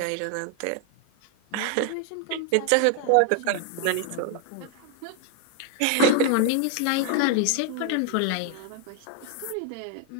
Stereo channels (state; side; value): different; both; correlation 0.00